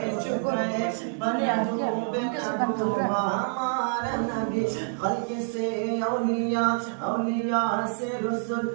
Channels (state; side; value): silent; left; digital silence